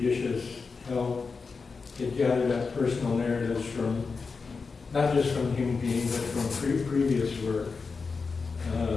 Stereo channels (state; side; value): quieter; right; 4.7 dB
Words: help, it gathered up personal narratives from, not just from the human being, but from previous work.